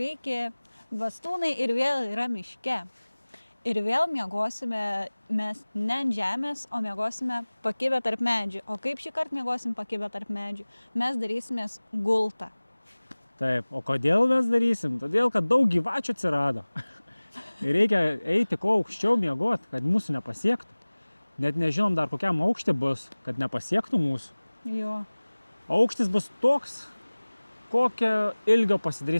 bastūnai ir vėl yra miške. Ir vėl miegosime mes ne ant žemės, o miegosime pakibę tarp medžių. O kaip šį kartą miegosim pakibę tarp medžių? Mes darysimės gultą. Taip, o kodėl mes darysim? Todėl, kad daug gyvačių atsirado. Ir reikia eiti kuo aukščiau miegot, kad mūsų nepasiektų. Net nežinom dar kokiam aukštį bus, kad nepasiektų mūsų. Jo. Aukštis bus toks, kokio ilgio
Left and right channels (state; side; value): inverted; both; correlation -1.00